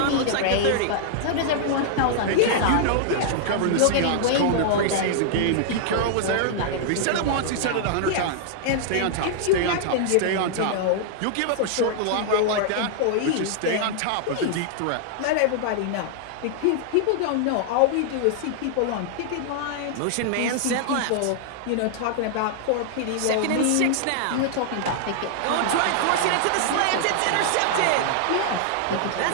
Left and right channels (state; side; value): different; both; correlation -0.01